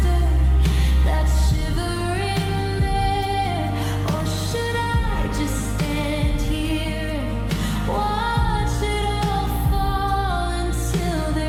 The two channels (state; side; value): identical; both; correlation 1.00